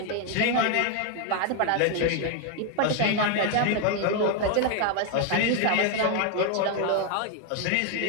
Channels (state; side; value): different; both; correlation 0.01